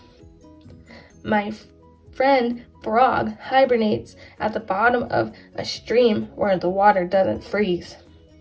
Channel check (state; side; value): identical; both; correlation 1.00